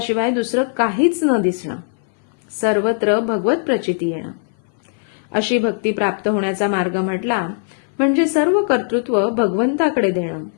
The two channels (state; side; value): silent; right; 58 dB below the other